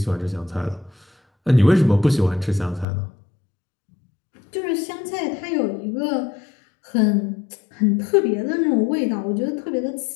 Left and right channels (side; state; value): right; drops out; at 2.9 s